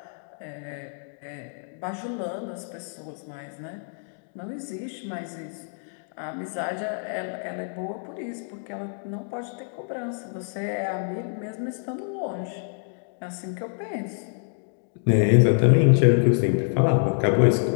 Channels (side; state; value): right; silent; digital silence